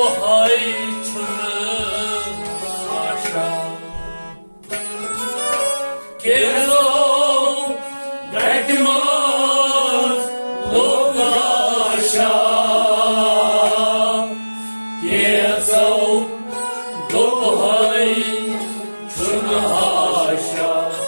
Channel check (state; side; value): inverted; both; correlation -1.00